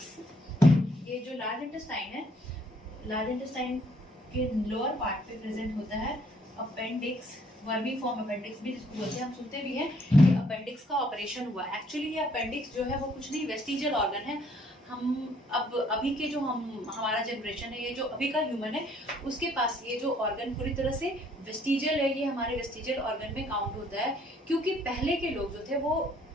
ये जो लार्ज इंटेस्टाइन के लोअर पार्ट पे प्रेजेंट होता है अपेंडिक्स, वर्मी फॉर्म अपेंडिक्स भी जिसको बोलते हैं। हम सुनते भी हैं कि अपेंडिक्स का ऑपरेशन हुआ। एक्चुअली ये अपेंडिक्स जो है वो कुछ नहीं, वेस्टिजियल ऑर्गन है। हम अभी के जो हमारा जनरेशन है, ये जो अभी का ह्यूमन है, उसके पास ये जो ऑर्गन पूरी तरह से वेस्टिजियल है, ये हमारे वेस्टिजियल ऑर्गन में काउंट होता है। क्योंकि पहले के लोग जो थे वो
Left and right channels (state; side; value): normal; both; correlation 0.64